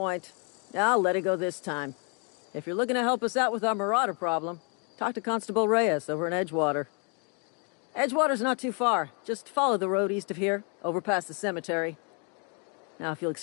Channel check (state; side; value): quieter; right; 37.1 dB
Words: I'll let it go this time. If you're looking to help us out with our Marauder problem, talk to Constable Reyes over in Edgewater. Edgewater's not too far. Just follow the road east of here, over past the cemetery. Now, if you'll